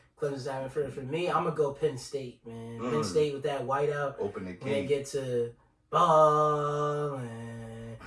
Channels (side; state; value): both; identical; correlation 1.00